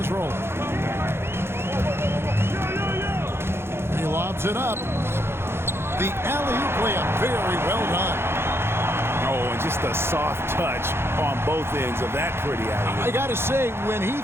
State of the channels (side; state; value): left; late; 0.12 ms